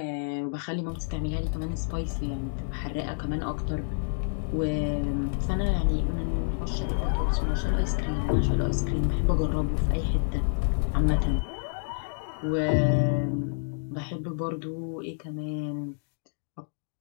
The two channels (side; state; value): right; silent; digital silence